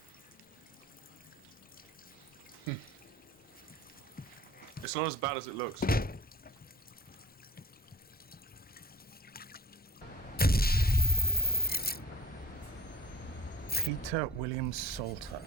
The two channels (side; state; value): both; normal; correlation 0.38